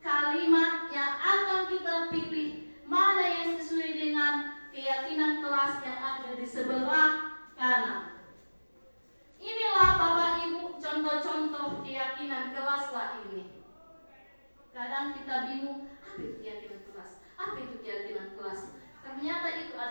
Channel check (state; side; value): inverted; both; correlation -1.00